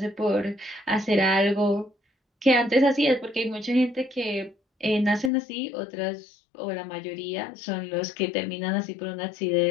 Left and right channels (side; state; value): right; drops out; at 5.3 s